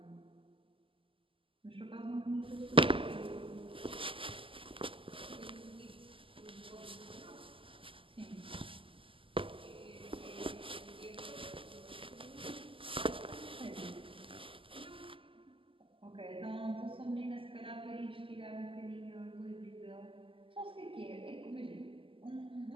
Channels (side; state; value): left; late; 0.25 ms